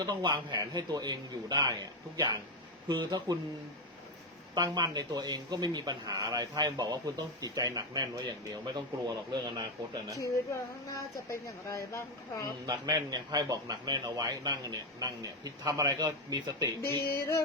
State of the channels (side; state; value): both; normal; correlation 0.08